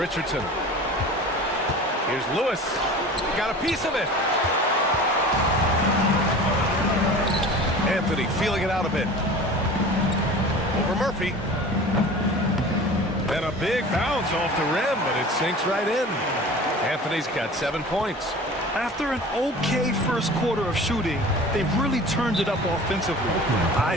Here's Lewis. Got a piece of it. Anthony feeling it out a bit. Over Murphy. And a big bounce off the rim, but it sinks right in. Anthony's got 7 points. After an okay first quarter of shooting, they've really turned it up offensively.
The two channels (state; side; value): normal; both; correlation 0.39